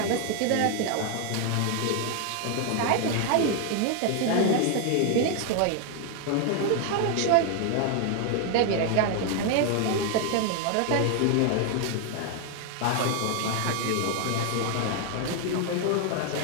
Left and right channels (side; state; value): both; different; correlation 0.00